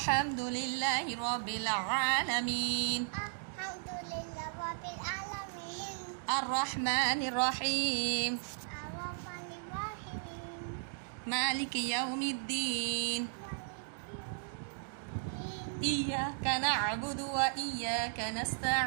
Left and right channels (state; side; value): silent; left; digital silence